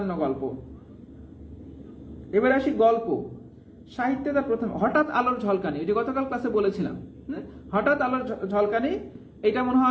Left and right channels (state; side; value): identical; both; correlation 1.00